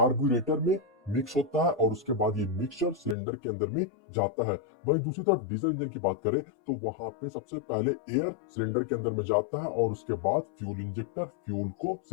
में मिक्स होता है और उसके बाद ये मिक्सचर सिलेंडर के अंदर में जाता है। वहीं दूसरी तरफ डीजल इंजन की बात करें तो वहां पे सबसे पहले एयर सिलेंडर के अंदर में जाता है और उसके बाद फ्यूल इंजेक्टर फ्यूल को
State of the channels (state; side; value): drops out; right; at 3.2 s